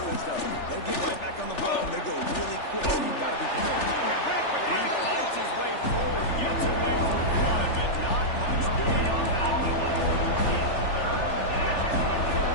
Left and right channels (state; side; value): late; right; 3.4 ms